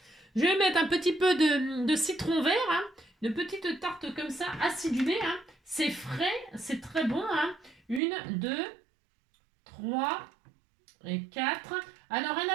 Je vais mettre un petit peu de citron vert. Hein. Une petite tarte comme ça, acidulée. Hein. C'est frais, c'est très bon. Hein. 1, 2, 3 et 4. Alors, un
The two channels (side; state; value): left; drops out; at 8.0 s